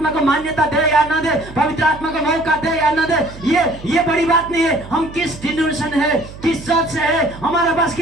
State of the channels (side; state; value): right; noise; hum, 16 dB below the sound